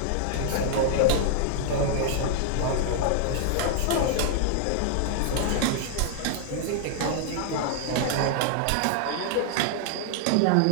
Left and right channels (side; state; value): both; different; correlation 0.00